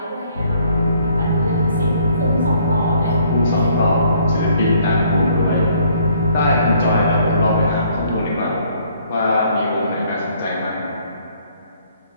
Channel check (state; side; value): inverted; both; correlation -0.63